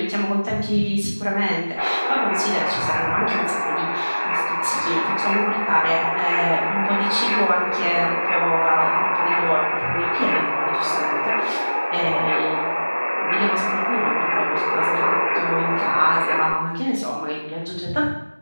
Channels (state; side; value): inverted; both; correlation -1.00